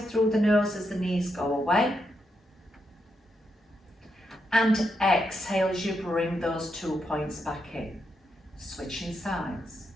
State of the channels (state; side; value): normal; both; correlation 0.82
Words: through the nose as the knees go away. And exhale as you bring those 2 points back in. Switching sides.